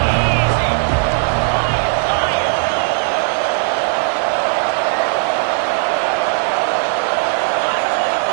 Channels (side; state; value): left; silent; 64 dB below the other